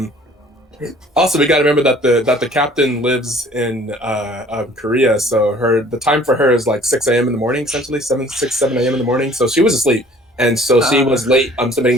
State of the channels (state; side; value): normal; both; correlation 0.53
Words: also we gotta remember that the captain lives in Korea, so the time for her is like 6 a.m. in the morning, essentially 7 a.m. in the morning. So she was asleep, and so she Uh, was late